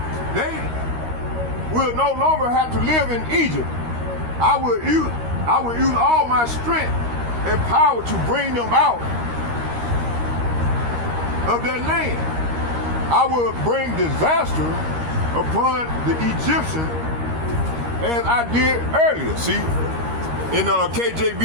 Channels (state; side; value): late; left; 13 ms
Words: They will no longer have to live in Egypt. I will use all my strength and power to bring them out of that land. I will bring disaster upon the Egyptians as I did earlier. See, in